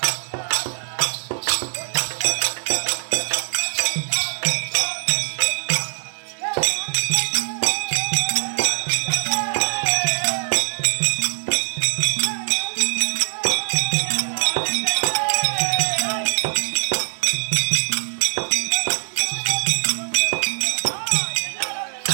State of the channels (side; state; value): left; silent; 63 dB below the other